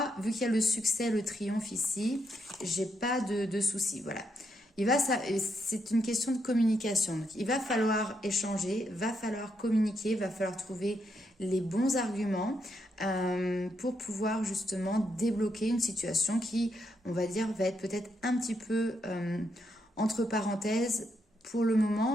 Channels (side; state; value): both; normal; correlation 0.79